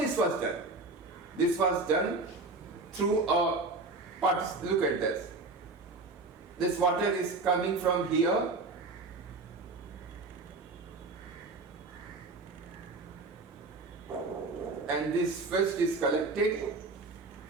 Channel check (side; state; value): left; quieter; 3.5 dB